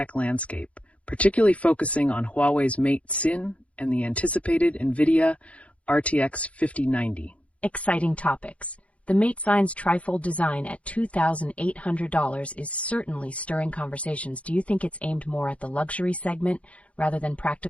landscape, particularly focusing on Huawei's Mate Sin and the anticipated Nvidia RTX 5090. Exciting topics. The Mate Sign's Trifold design at $2,800 is certainly stirring conversations. Do you think it's aimed more at the luxury segment rather than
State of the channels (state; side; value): late; right; 0.064 ms